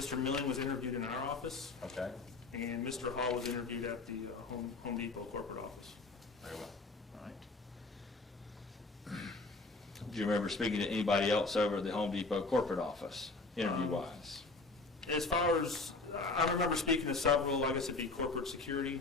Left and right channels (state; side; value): quieter; right; 3.6 dB